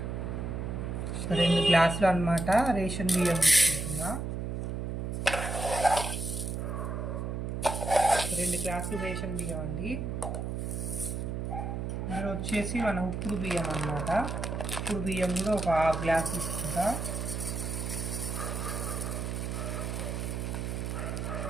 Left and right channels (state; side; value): noise; right; hum, 3 dB below the sound